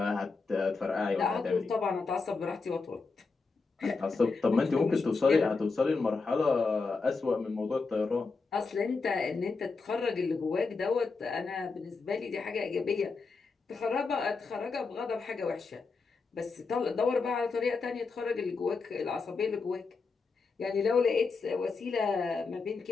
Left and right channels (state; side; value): quieter; right; 4.4 dB